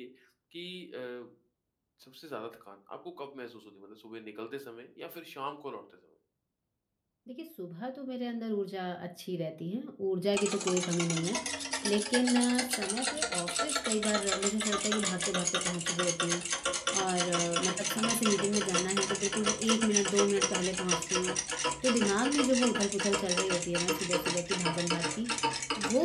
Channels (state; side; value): identical; both; correlation 1.00